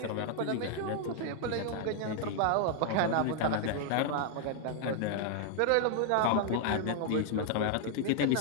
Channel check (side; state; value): both; different; correlation 0.00